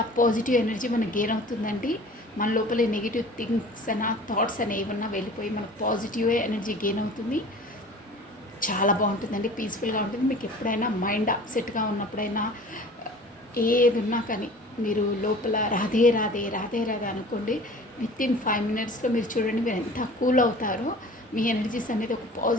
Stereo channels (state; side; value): normal; both; correlation 0.44